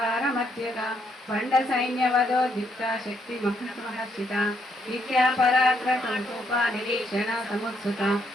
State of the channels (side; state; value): both; normal; correlation 0.74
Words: పండ సైన్యవదోద్యుక్త శక్తి మహర్షిత విద్యా పరాక్రమూప నిరీక్షణ సముత్సుత